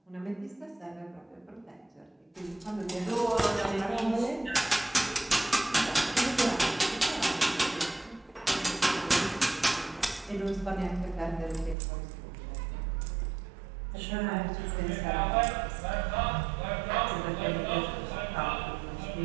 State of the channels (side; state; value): left; drops out; at 11.8 s